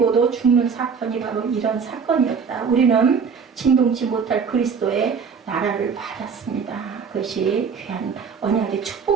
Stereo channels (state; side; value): quieter; left; 6.0 dB